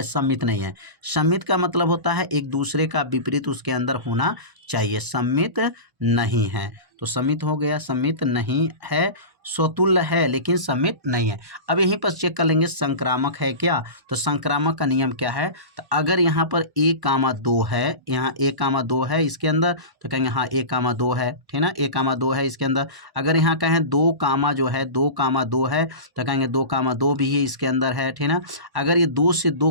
सम्मित नहीं है। सम्मित का मतलब होता है एक दूसरे का विपरीत उसके अंदर होना चाहिए। सम्मित नहीं है, तो सम्मित हो गया, सम्मित नहीं है, स्वतुल्य है लेकिन सम्मित नहीं है। अब यहीं पर चेक कर लेंगे संक्रामक है क्या, तो संक्रामक का नियम क्या है, तो अगर यहाँ पर 1, 2 है, यहाँ 1, 2 है इसके अंदर, तो कहेंगे हाँ 1, 2 है, ठीक ना, 1, 2 है इसके अंदर। अगर यहाँ कहें 2, जो है 2, है, तो कहेंगे 2, भी है इसके अंदर है, ठीक ना। अगर ये 2 से 2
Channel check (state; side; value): late; left; 1.0 ms